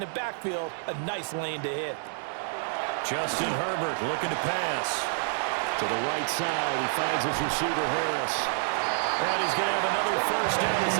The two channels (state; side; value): silent; left; digital silence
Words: the backfield a nice lane to hit. Justin Herbert looking to pass. To the right side, he finds his receiver Harris. And he's going to have another first down as